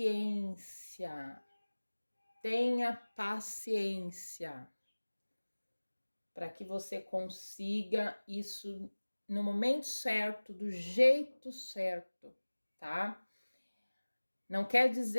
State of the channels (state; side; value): inverted; both; correlation -1.00